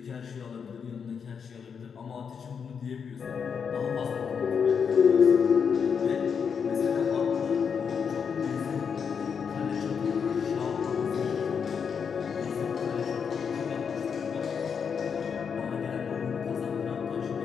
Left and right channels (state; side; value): quieter; right; 6.6 dB